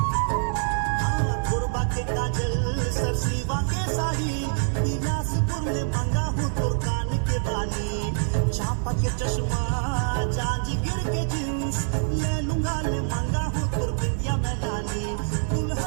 गुरबा के काजल सरसीवा के साही बिलासपुर ले मांगा हूँ तो कान के बाली चापा के चश्मा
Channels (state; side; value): silent; left; 61 dB below the other